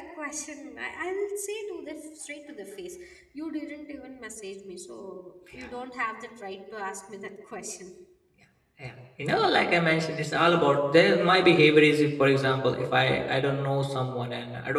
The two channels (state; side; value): identical; both; correlation 1.00